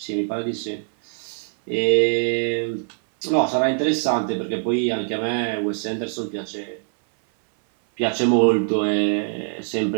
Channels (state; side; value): silent; left; 60 dB below the other